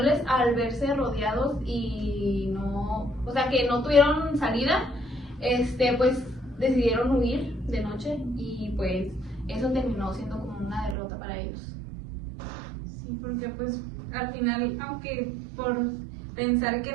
al verse rodeados y que no tuvieron salida, pues decidieron huir de noche, y pues eso terminó siendo como una derrota para ellos. Sí, porque pues al final, aunque por pensar que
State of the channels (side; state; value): left; drops out; at 11.0 s